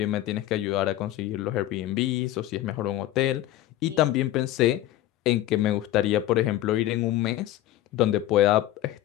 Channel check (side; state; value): right; quieter; 14.0 dB